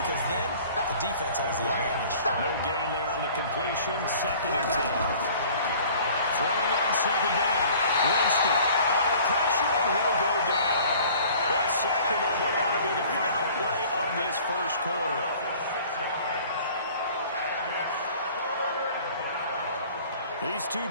because then the defense has the advantage. No gain there on the completion. 2nd and 10. Throwing on 2nd down. Winston under pressure, and he'll go down. The second on what ought to be the final play of this first quarter. These two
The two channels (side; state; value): both; inverted; correlation -0.49